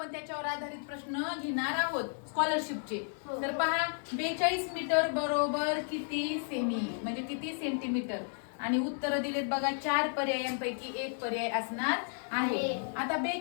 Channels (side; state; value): right; silent; 56 dB below the other